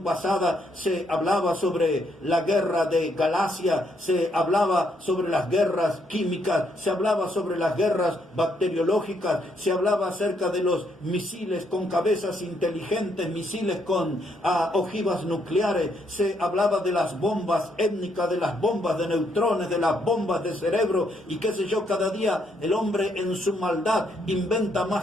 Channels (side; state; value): both; normal; correlation 0.74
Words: pasada se hablaba sobre la guerra de Galacia, se hablaba sobre las guerras químicas, se hablaba sobre las guerras bacteriológicas, se hablaba acerca de los misiles con cabezas inteligentes, misiles con ojivas nucleares, se hablaba de las bombas étnicas, de las bombas de neutrones, de las bombas de cerebro y qué sé yo. Cada día el hombre en su maldad inventa